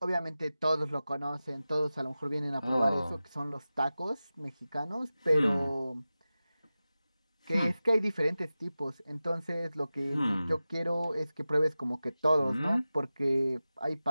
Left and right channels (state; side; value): inverted; both; correlation -0.95